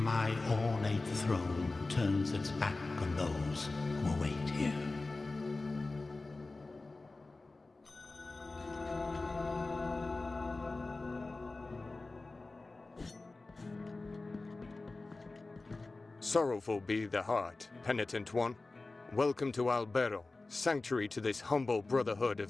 ornate throne turns its back on those who await here. Sorrowful be the heart, penitent one. Welcome to Albero, sanctuary to this humble brotherhood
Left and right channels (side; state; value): right; quieter; 3.4 dB